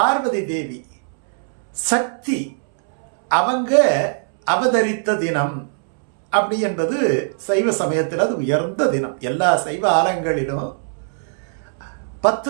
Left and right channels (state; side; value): silent; left; 66 dB below the other